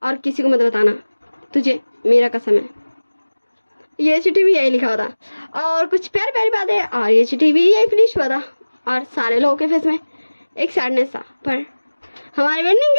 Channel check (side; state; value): both; inverted; correlation -1.00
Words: और किसी को मत बताना, तुझे मेरा कसम है। ये चिट्ठी भी यही लिखा होता और कुछ प्यारी प्यारी बातें, और ये चिट्ठी भी यही फिनिश हुआ था और सारे लोगों के फेस में एक सैडनेस था, पर हमारे वेंडिंग